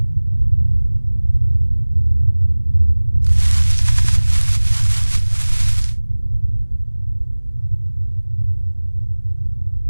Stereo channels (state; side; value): inverted; both; correlation -1.00